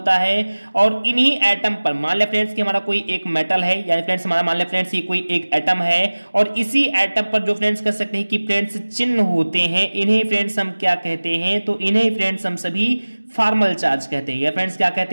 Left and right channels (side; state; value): both; inverted; correlation -1.00